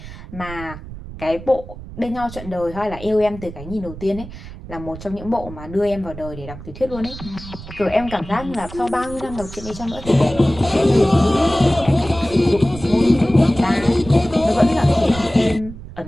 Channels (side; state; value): right; noise; rumble, 13 dB below the sound